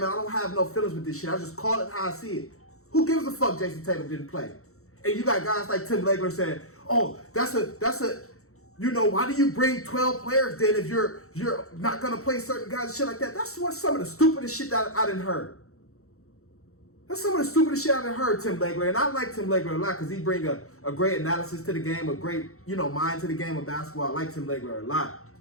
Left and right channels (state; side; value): late; right; 0.64 ms